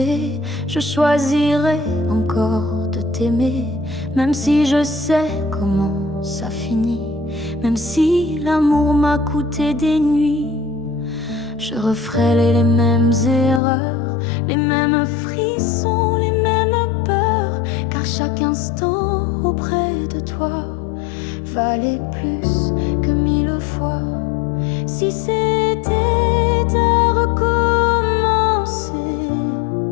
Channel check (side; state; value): right; drops out; at 13.6 s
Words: je choisirais encore de t'aimer. Même si je sais comment ça finit, même si l'amour m'a coûté des nuits, je referais les mêmes erreurs, les mêmes frissons, les mêmes peurs. Car chaque instant auprès de toi valait plus que 1000 fois. Si c'était à recommencer,